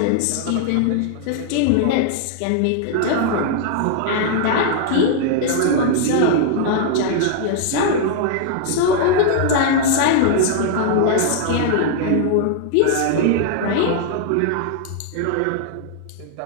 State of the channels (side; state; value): both; different; correlation 0.00